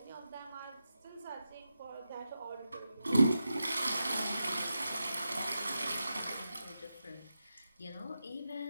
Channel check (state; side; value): inverted; both; correlation -0.90